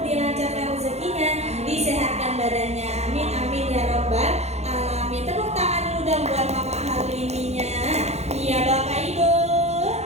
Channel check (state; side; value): late; left; 0.31 ms